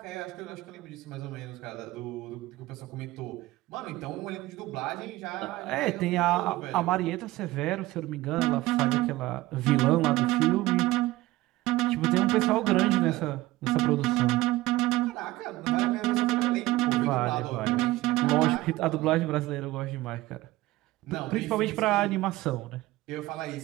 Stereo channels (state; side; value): quieter; left; 18.0 dB